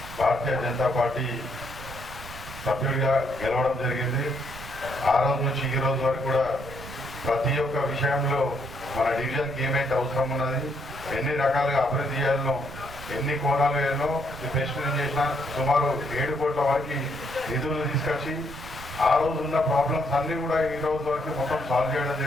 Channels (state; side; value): noise; right; rumble, 15 dB below the sound